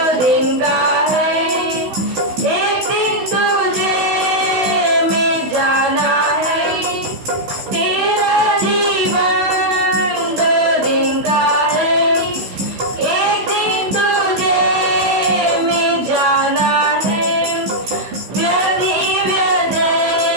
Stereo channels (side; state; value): left; late; 16 ms